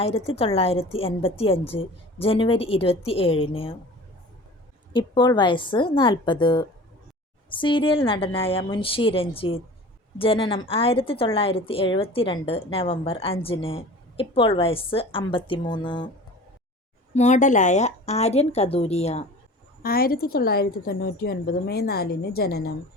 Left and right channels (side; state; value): both; normal; correlation 0.40